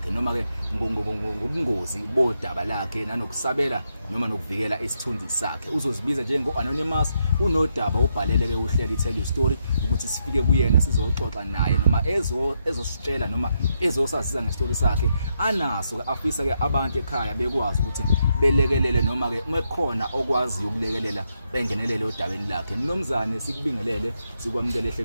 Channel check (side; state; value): both; inverted; correlation -0.80